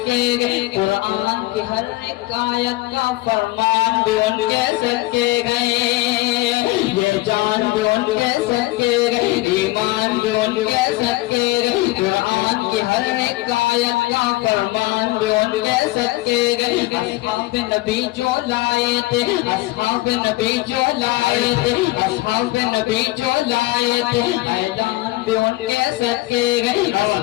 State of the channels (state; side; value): quieter; right; 19.4 dB